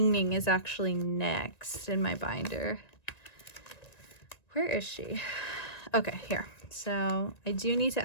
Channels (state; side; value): late; right; 1.9 ms